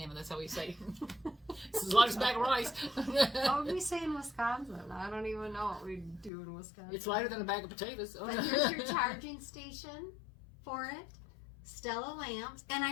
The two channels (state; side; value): drops out; right; at 6.3 s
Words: That's how we say. It's as light as a bag of rice. what would we say in Wisconsin? I don't even know what we do in Wisconsin. It's lighter than a bag of potatoes. But here's your charging station for it. Stella lamps, and